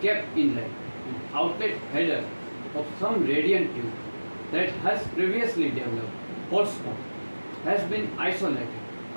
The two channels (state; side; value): inverted; both; correlation -1.00